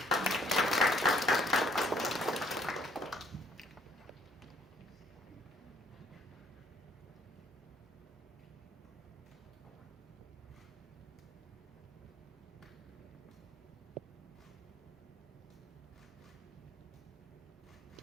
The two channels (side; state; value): both; normal; correlation 0.63